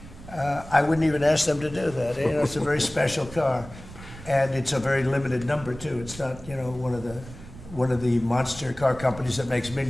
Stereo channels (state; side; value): noise; right; rumble, 16 dB below the sound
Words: I wouldn't even ask them to do that. You know, it's a very special car, and it's a very limited number too. It's not, you know, one of the monster car companies that makes